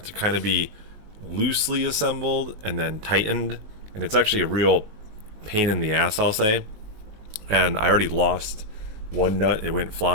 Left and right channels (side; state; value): left; late; 19 ms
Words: to kind of be loosely assembled and then tightened, and it's actually a real pain in the ass, I'll say. And I already lost one nut. It went